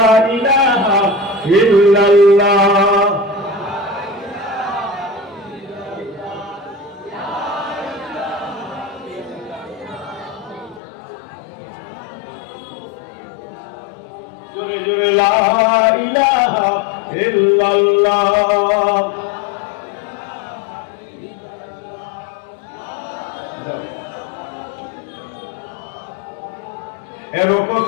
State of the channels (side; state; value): right; drops out; at 10.8 s